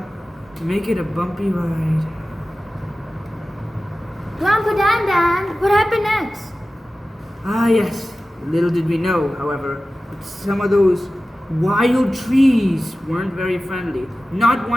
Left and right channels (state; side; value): normal; both; correlation 0.95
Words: to make it a bumpy ride. Grandpa Dan, what happened next? Ah yes, little did we know, however, that some of those wild trees weren't very friendly, not